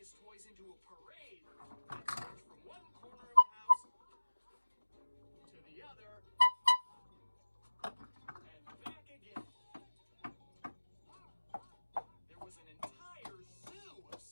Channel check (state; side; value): inverted; both; correlation -1.00